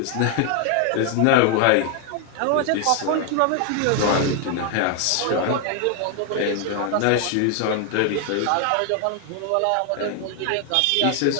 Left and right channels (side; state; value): both; different; correlation 0.00